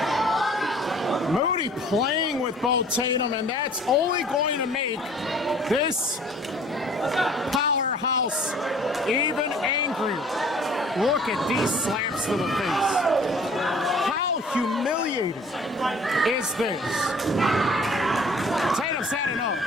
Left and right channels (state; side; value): normal; both; correlation 0.51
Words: Moody playing with Bo Tatum, and that's only going to make this powerhouse even angrier. Look at these slaps to the face. How humiliating is this? Tatum's had enough.